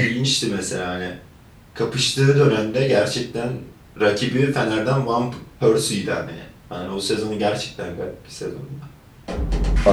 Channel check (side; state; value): both; identical; correlation 1.00